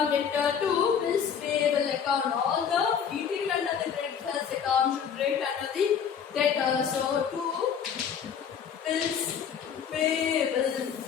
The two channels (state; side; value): quieter; right; 7.6 dB